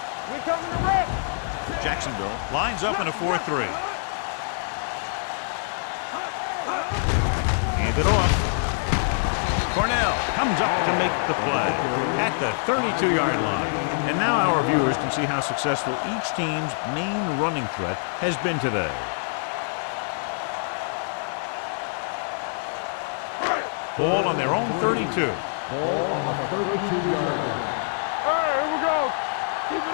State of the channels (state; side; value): silent; right; digital silence